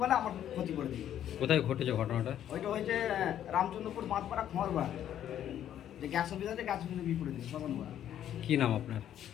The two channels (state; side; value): quieter; right; 10.8 dB